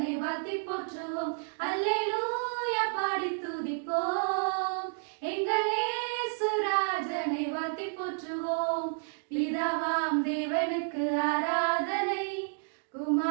வாழ்த்தி போற்றுவோம். அல்லேலூயா பாடி துதிப்போம், எங்கள் இயேசு ராஜனை வாழ்த்தி போற்றுவோம். பிதாவாம் தேவனுக்கு ஆராதனை,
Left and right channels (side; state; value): left; silent; digital silence